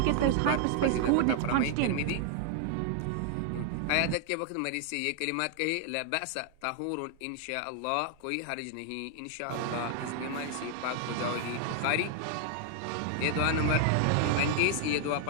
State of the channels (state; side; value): different; both; correlation 0.00